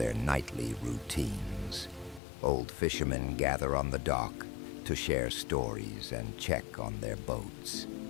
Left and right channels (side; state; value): right; drops out; at 2.2 s